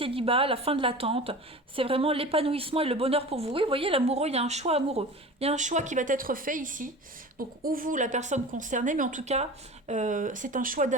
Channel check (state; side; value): normal; both; correlation 0.36